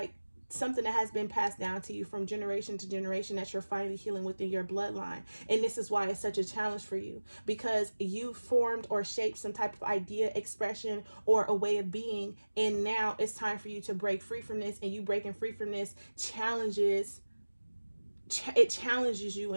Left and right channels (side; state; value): both; inverted; correlation -1.00